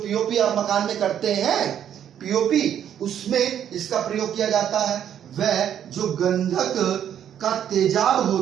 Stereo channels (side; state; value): left; quieter; 9.7 dB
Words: आप मकान में करते हैं, पीओपी, उसमें इसका प्रयोग किया जाता है। वह जो गंधक का तेजाब